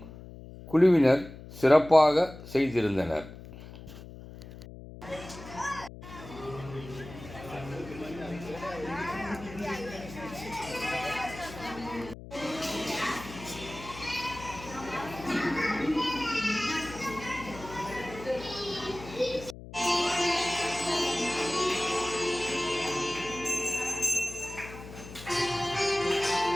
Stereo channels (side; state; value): left; noise; hum, 14 dB below the sound